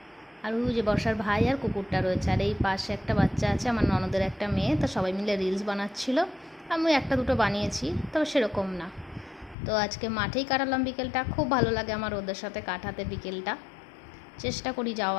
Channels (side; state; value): right; drops out; at 9.6 s